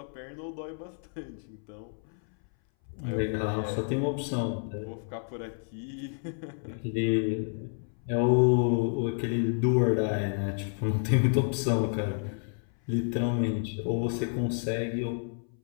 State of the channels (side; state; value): right; silent; 58 dB below the other